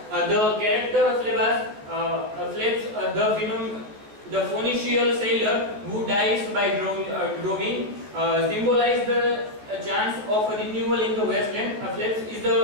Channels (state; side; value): late; left; 14 ms